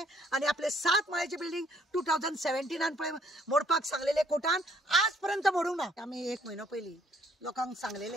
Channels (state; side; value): normal; both; correlation 0.64